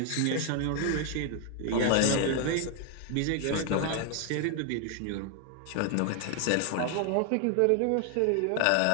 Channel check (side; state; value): both; different; correlation 0.00